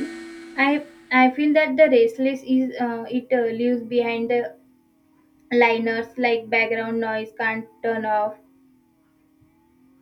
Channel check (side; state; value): both; identical; correlation 1.00